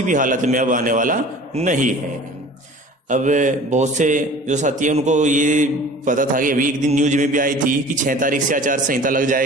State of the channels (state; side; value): normal; both; correlation 0.44